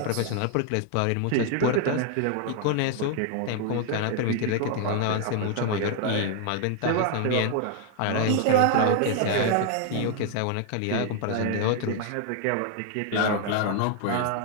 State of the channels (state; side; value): different; both; correlation 0.00